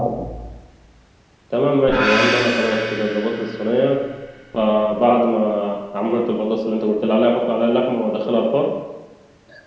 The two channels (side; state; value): both; identical; correlation 1.00